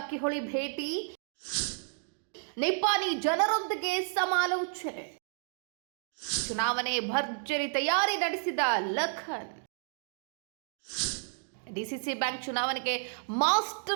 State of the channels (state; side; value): silent; left; digital silence